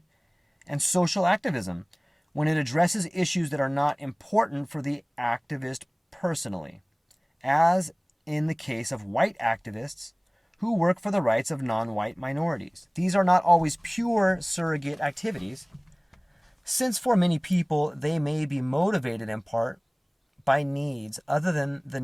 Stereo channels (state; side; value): identical; both; correlation 1.00